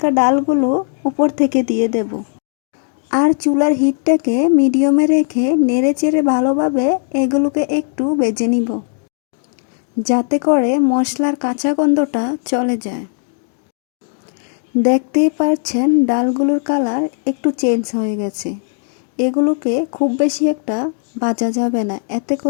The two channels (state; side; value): silent; right; digital silence